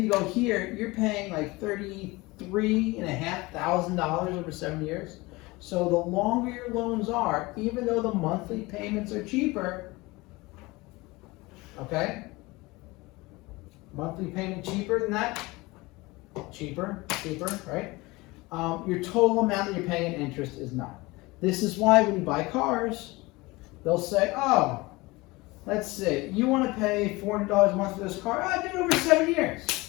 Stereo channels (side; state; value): right; quieter; 22.4 dB